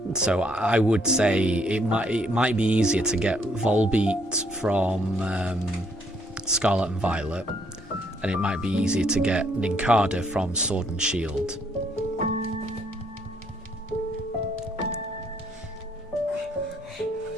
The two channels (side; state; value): both; normal; correlation 0.69